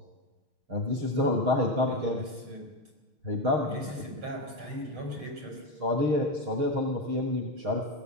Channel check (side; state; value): left; late; 6.4 ms